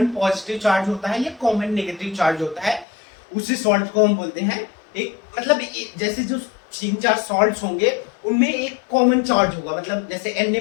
पॉजिटिव चार्ज होता है या कॉमन नेगेटिव चार्ज होता है। उसी सॉल्ट को हम बोलते हैं एक, मतलब जैसे जो तीन चार सॉल्ट्स होंगे, उनमें एक कॉमन चार्ज होगा, मतलब जैसे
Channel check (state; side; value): drops out; right; at 2.9 s